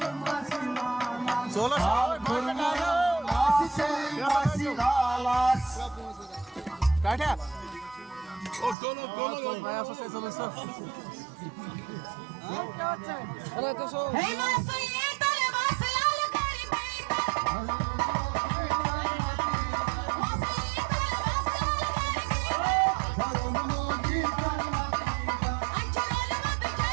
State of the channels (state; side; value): drops out; left; at 8.8 s